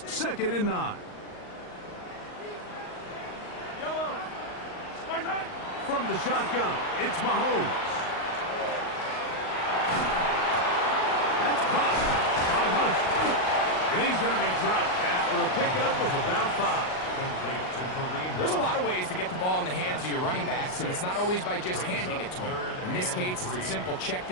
2nd and 9. From the shotgun, it's Mahomes. That's caught by Hunt. And he's going to be dropped after a pickup of about 5. There's a lot of ways to get the ball in the hands of your running backs, and it's not always by just handing it to them. In this case, it's a simple check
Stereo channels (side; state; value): right; late; 38 ms